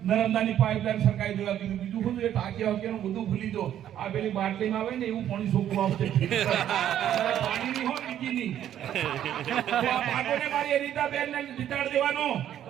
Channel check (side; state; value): left; quieter; 10.9 dB